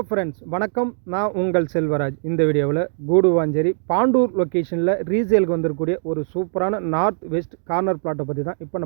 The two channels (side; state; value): left; silent; digital silence